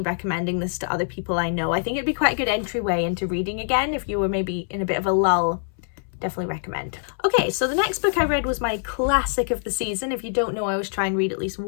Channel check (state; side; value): silent; right; 62 dB below the other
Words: recommending this to other people I know. I think it'd be quite a good entryway into reading again if you were maybe in a bit of a lull. Definitely recommend. Okay, so the next book I read was my classic of the season. If you don't know, I always try and read at least